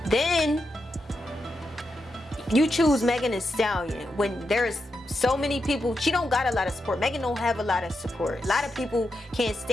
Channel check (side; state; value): both; normal; correlation 0.86